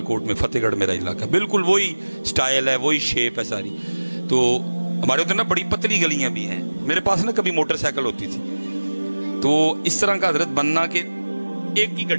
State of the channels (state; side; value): inverted; both; correlation -1.00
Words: میں, فتح گڑھ میرا علاقہ, بالکل وہی سٹائل ہے, وہی شیپ ہے ساری. تو ہمارے ادھر نا بڑی پتلی گلیاں بھی ہیں. میرے پاس نا کبھی موٹر سائیکل ہوتی تھی, تو اس طرح کا حضرت بننا کہ ایک کی